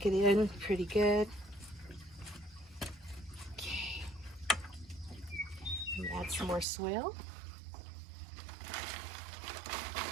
it in pretty good. Okay. And add some more soil.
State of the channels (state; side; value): drops out; left; at 6.7 s